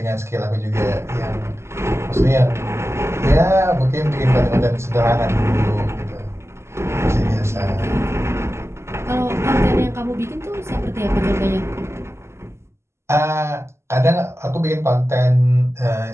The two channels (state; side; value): late; left; 0.13 ms